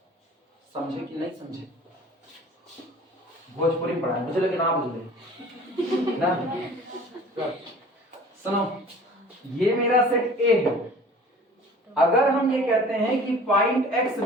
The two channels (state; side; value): normal; both; correlation 0.46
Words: समझे कि नहीं समझे? भोजपुरी में पढ़ा, मुझे लगे ना बुझे ना। सुनो, ये मेरा सेट A है। अगर हम ये कहते हैं कि point X